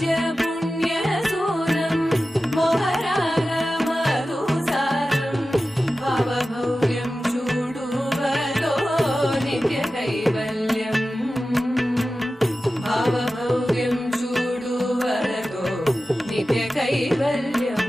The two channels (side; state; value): both; normal; correlation 0.94